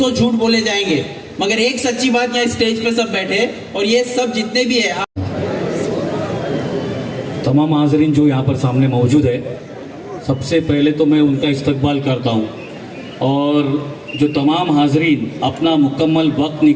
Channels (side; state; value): both; identical; correlation 1.00